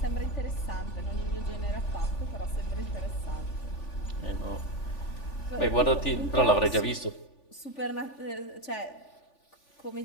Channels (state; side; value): late; right; 3.4 ms